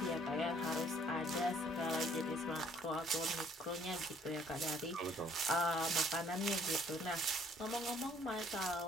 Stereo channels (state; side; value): normal; both; correlation 0.61